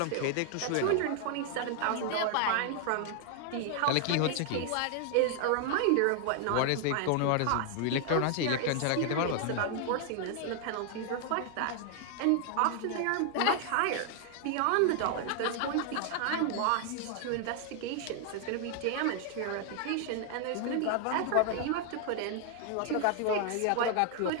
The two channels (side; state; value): both; different; correlation 0.00